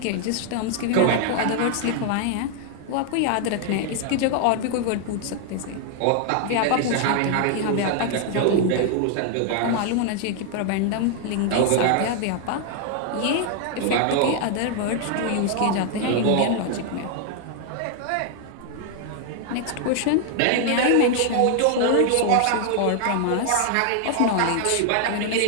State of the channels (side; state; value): both; different; correlation 0.00